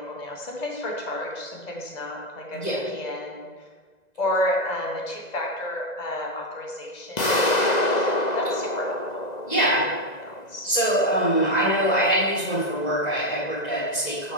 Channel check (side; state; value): right; late; 2.0 ms